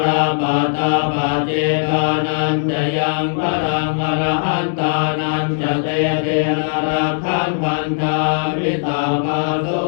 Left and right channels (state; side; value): silent; right; digital silence